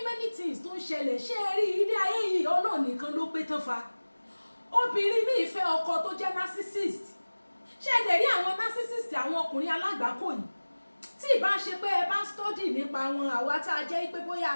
things tó ń ṣẹlẹ̀ ṣé ẹ rí ilé ayé yìí ọlọ́ọ̀ nìkan ló pé tán fa obìnrin míì fẹ́ ọkọ tó jẹ́ narcissist ṣé ẹ dẹ̀ rí àwọn narcissist àwọn ọkùnrin alágbàákò yìí tí ìbá ṣe pé ẹ bá study nípa wọn àwa tá a jẹ́ pé bóyá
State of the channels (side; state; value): both; inverted; correlation -1.00